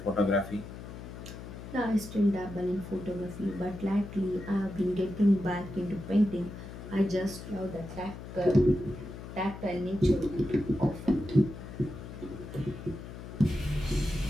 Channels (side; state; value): left; noise; hum, 11 dB below the sound